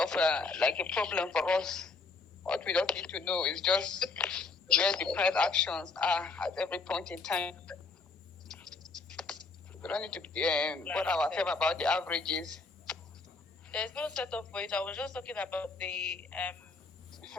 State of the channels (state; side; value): quieter; right; 4.1 dB